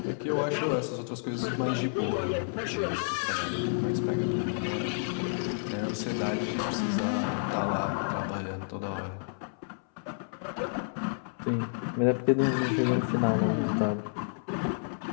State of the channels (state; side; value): silent; right; 58 dB below the other